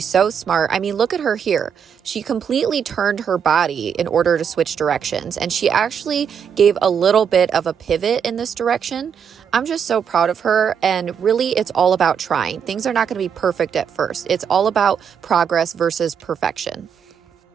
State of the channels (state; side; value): quieter; left; 7.5 dB